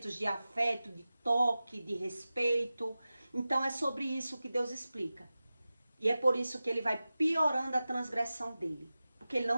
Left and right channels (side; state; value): both; inverted; correlation -0.95